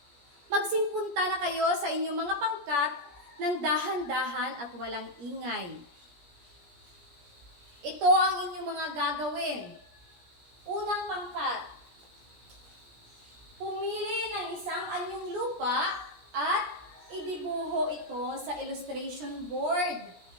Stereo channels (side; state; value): left; late; 17 ms